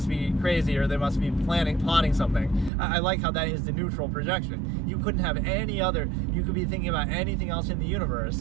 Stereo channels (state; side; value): drops out; left; at 2.7 s